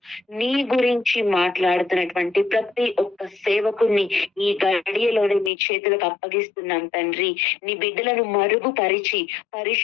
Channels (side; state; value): right; drops out; at 5.5 s